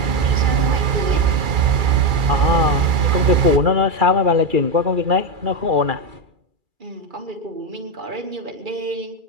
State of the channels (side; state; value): left; late; 2.3 ms